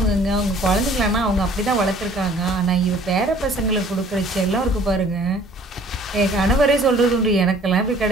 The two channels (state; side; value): normal; both; correlation 0.54